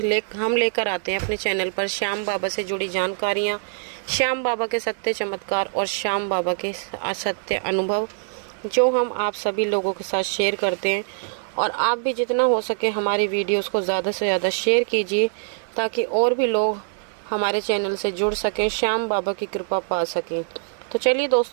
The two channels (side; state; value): left; silent; digital silence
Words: हम लेकर आते हैं अपने चैनल पर श्याम बाबा से जुड़ी जानकारियाँ, श्याम बाबा के सत्य चमत्कार और श्याम बाबा के असत्य अनुभव, जो हम आप सभी लोगों के साथ शेयर करते हैं। और आप भी जितना हो सके हमारी वीडियोस को ज़्यादा से ज़्यादा शेयर कीजिए, ताकि और भी लोग हमारे चैनल से जुड़ सकें, श्याम बाबा की कृपा पा सकें। तो चलिए